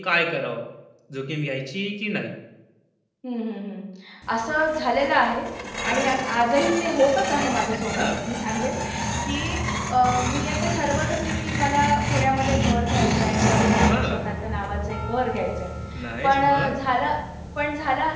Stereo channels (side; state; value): both; identical; correlation 1.00